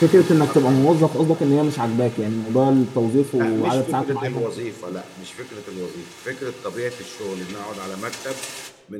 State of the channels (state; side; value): identical; both; correlation 1.00